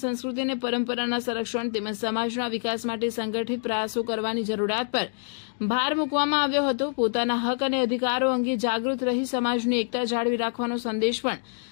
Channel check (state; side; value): silent; right; digital silence